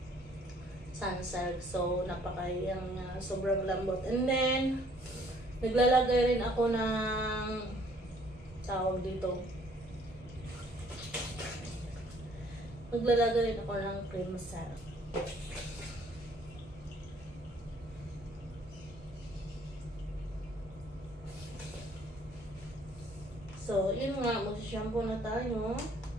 Sunsilk. So, sobrang lambot. And then, naglalagay rin ako ng, tawag dito, maglalagay rin ako ng cream silk. So, yun nga, mag-shampoo na tayo.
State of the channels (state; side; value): normal; both; correlation 0.60